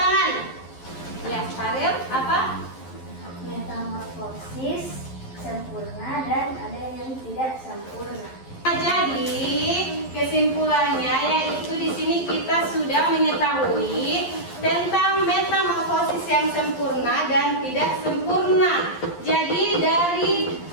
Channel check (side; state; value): right; late; 11 ms